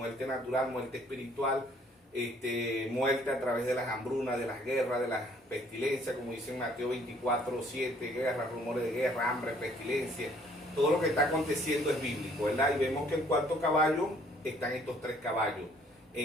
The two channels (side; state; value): both; normal; correlation 0.61